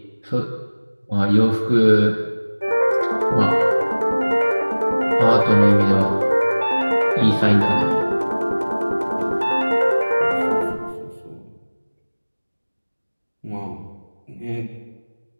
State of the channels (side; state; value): both; inverted; correlation -1.00